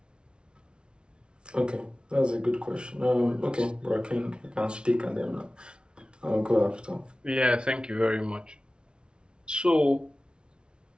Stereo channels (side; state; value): left; late; 0.056 ms